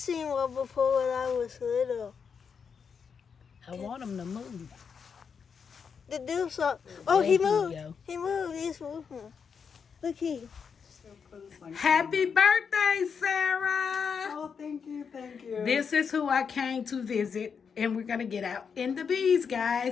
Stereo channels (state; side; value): quieter; right; 6.3 dB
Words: one before when I was little. I want him to move. To do something. Oh, he There moved. go. He moved. He's moving. Look here. Happy birthday, Sarah. Oh, thank you, thank you. This is who I came to visit, and we're going to get out in the bees,